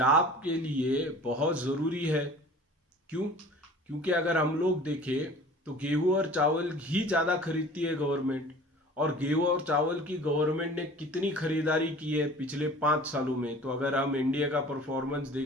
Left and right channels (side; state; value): both; normal; correlation 0.44